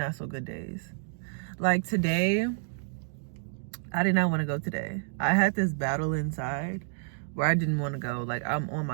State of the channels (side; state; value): left; silent; digital silence